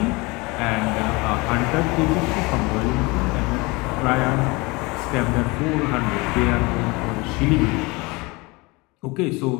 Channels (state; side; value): quieter; right; 25.0 dB